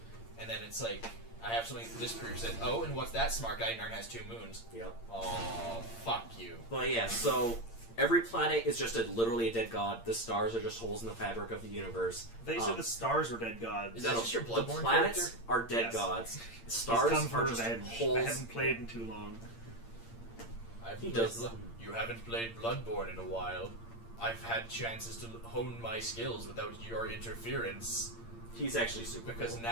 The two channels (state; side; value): late; right; 8.7 ms